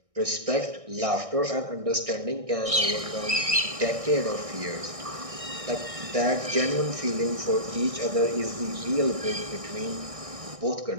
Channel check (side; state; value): left; late; 1.6 ms